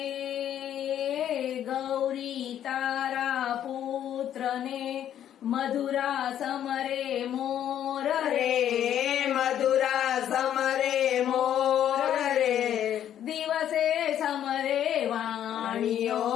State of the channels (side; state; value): right; quieter; 10.5 dB